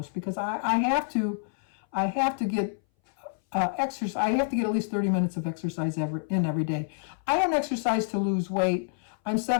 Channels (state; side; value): silent; right; 59 dB below the other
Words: because I have to get exercise. I have to get at least 30 minutes of exercise every day. I don't exercise to lose weight. I'm